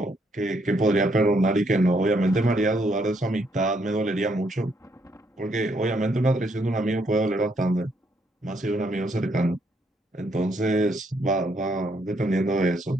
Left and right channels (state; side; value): normal; both; correlation 0.72